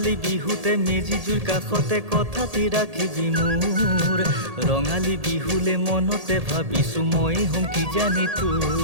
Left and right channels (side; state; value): left; late; 1.8 ms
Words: বিহুতে মেজি জুইৰ কাষতে কথাটি ৰাখিবি মোৰ ৰঙালী বিহুলে মনতে ভাবিছো মই হ'ম কি জানি